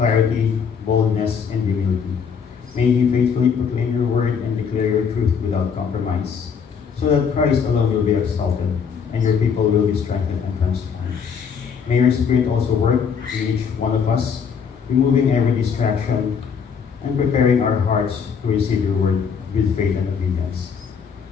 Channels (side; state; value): right; quieter; 6.6 dB